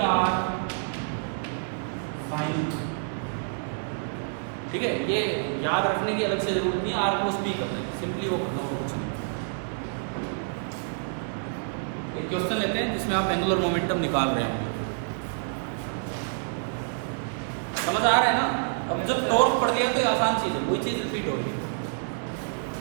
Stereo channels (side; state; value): left; silent; 60 dB below the other